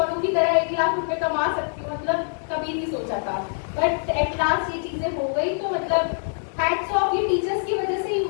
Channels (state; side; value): silent; right; digital silence